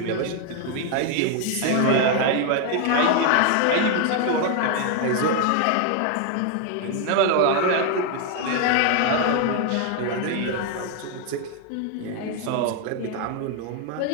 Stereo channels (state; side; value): different; both; correlation 0.01